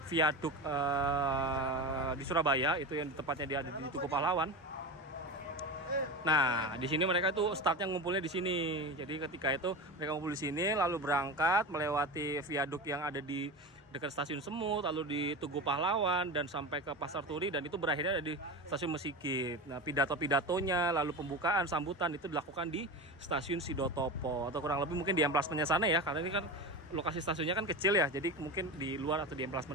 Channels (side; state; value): both; normal; correlation 0.25